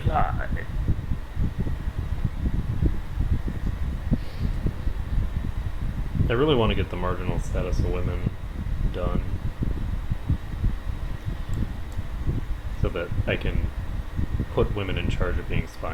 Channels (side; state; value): both; identical; correlation 1.00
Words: I really want to get the marginal status of women done so that I can put women in charge of being